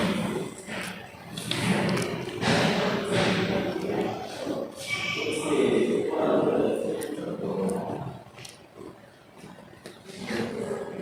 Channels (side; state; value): both; identical; correlation 1.00